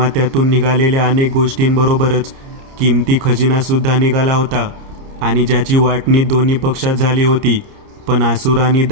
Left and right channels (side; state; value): left; late; 29 ms